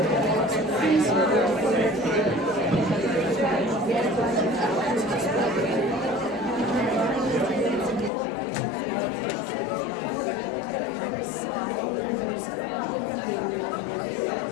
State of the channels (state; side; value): drops out; right; at 8.1 s